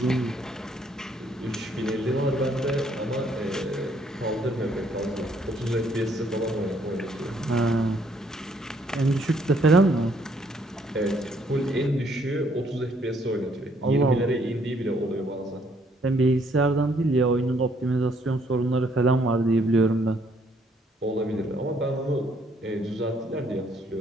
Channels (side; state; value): both; normal; correlation 0.67